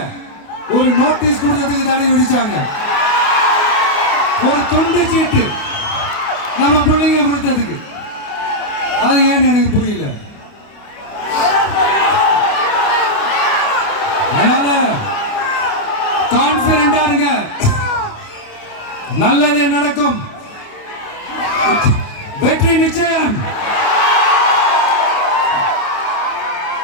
ஒரு நோட்டீஸ் கொடுத்ததுக்கு தடை விதிச்சாங்க. ஒரு துண்டு சீட்டு நம்ம பிள்ளைங்க கொடுத்ததுக்கு. அது ஏன்னு எனக்கு புரியல. அதனால கான்பிடண்டா இருங்க, நல்லதே நடக்கும், வெற்றி நிச்சயம்.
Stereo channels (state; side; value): late; right; 29 ms